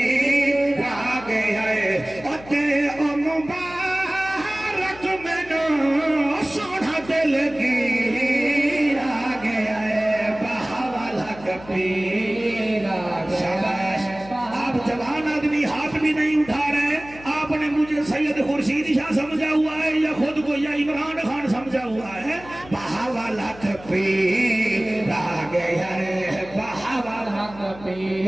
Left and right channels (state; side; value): noise; left; hum, 19 dB below the sound